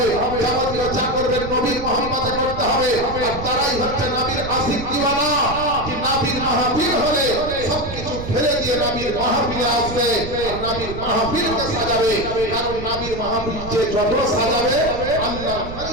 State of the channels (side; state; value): right; noise; rumble, 10 dB below the sound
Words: যাবতীয় যা করবেন নবীর মহব্বতে করতে হবে। আর তারাই হচ্ছে নবীর আশিক দিওয়ানা, যে নবীর মাহফিল হলে সবকিছু ফেলে দিয়ে নবীর মাহফিলে আসবে, আর নবীর মাহফিলকে সাজাবে। কারণ নবীর মাহফিল যে যত সাজাবে, আল্লাহর